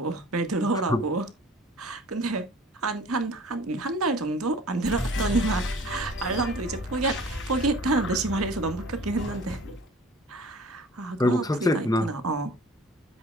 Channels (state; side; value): normal; both; correlation 0.47